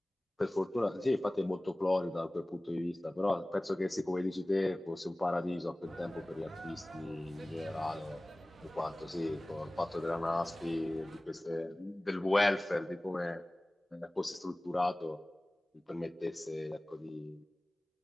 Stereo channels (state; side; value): normal; both; correlation 0.98